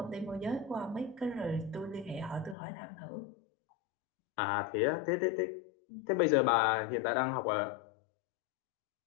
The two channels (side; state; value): right; drops out; at 2.6 s